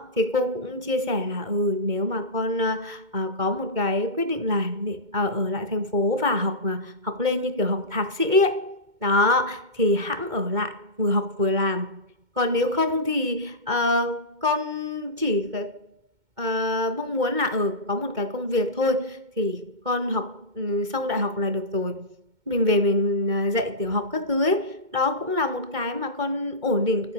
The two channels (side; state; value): left; late; 2.2 ms